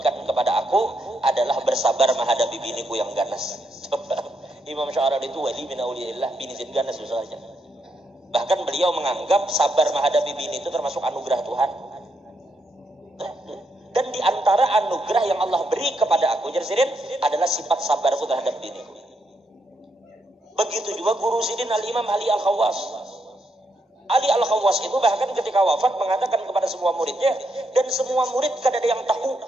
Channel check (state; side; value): normal; both; correlation 0.79